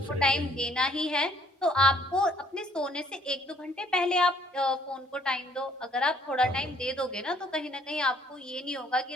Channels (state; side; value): normal; both; correlation 0.63